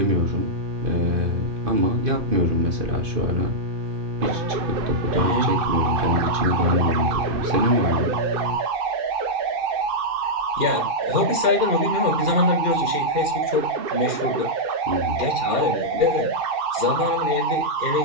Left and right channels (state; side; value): late; left; 2.4 ms